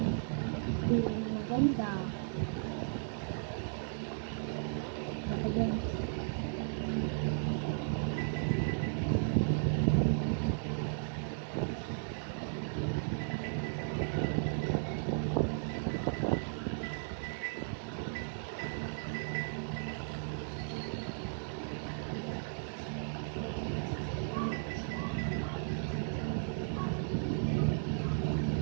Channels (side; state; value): left; silent; digital silence